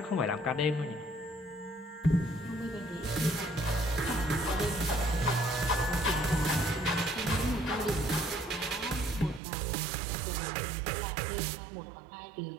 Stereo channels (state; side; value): drops out; left; at 9.4 s